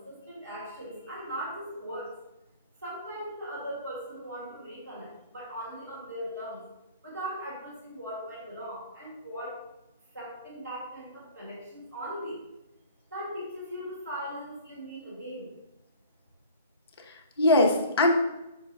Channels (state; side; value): inverted; both; correlation -0.45